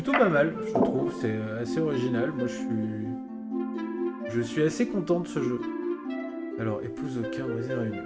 pas mal, je trouve, c'est assez original. Moi je suis assez content de ce jeu. Alors, épouse au cœur brisé réuni.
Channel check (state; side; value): identical; both; correlation 1.00